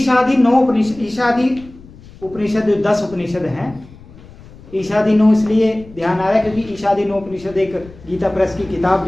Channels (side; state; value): left; noise; rumble, 21 dB below the sound